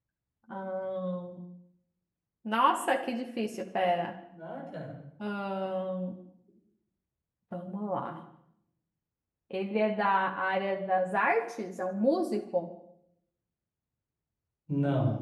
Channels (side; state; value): both; identical; correlation 1.00